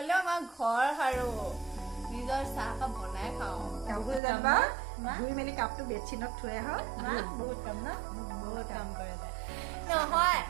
আমাৰ ঘৰ সাৰো নিজৰ চাহকাপ বনাই খাওঁ কাপোৰ জানিবা ধুই মেলি কাপটো বেডশ্বীটত থৈ আহ বহুত কাম ন বহুত কাম কৰে নহয়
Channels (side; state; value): left; drops out; at 4.2 s